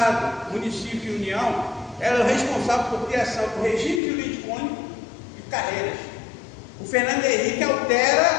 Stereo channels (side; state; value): right; drops out; at 4.0 s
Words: município e União, ela é responsável por criação do regime jurídico único e carreiras. O Fernando Henrique